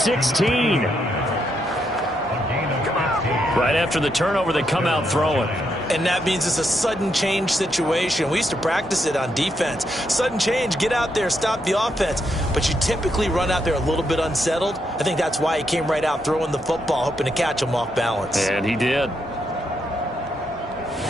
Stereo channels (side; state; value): both; normal; correlation 0.79